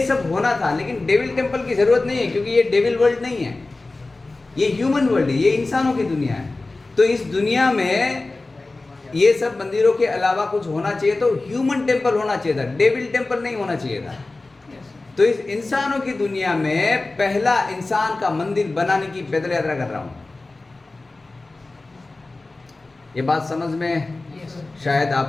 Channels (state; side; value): quieter; right; 3.2 dB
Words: सब होना था, लेकिन डेविल टेम्पल की ज़रूरत नहीं है, क्योंकि ये डेविल वर्ल्ड नहीं है, ये ह्यूमन वर्ल्ड है, ये इंसानों की दुनिया है। तो इस दुनिया में ये सब मंदिरों के अलावा कुछ होना चाहिए, तो ह्यूमन टेम्पल होना चाहिए था, डेविल टेम्पल नहीं होना चाहिए था। तो इस इंसानों की दुनिया में पहला इंसान का मंदिर बनाने की पैदल यात्रा कर रहा हूँ। ये बात समझ में शायद